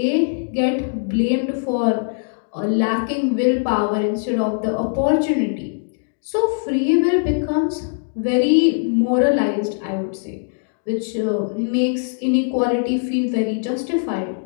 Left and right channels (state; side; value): silent; right; digital silence